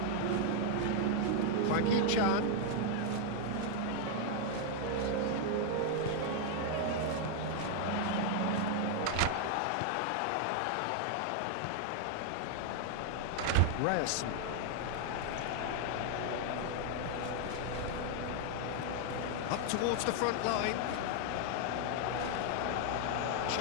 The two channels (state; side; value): different; both; correlation 0.00